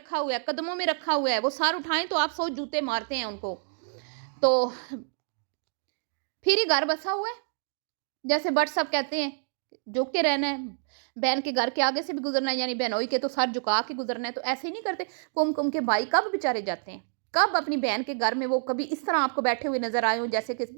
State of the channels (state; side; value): silent; left; digital silence